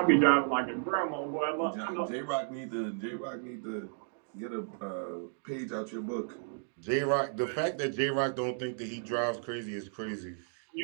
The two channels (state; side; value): silent; left; digital silence